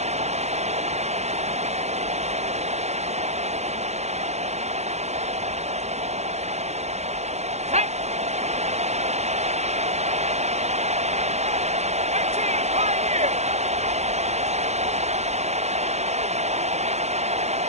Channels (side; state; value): left; late; 0.32 ms